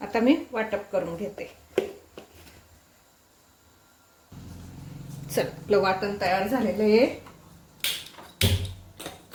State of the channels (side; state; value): both; identical; correlation 1.00